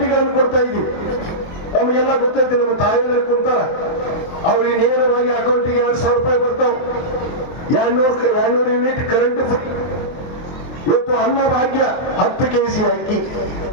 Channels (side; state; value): right; late; 23 ms